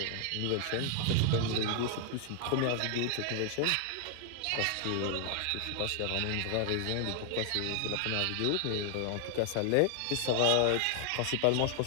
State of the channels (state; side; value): different; both; correlation 0.00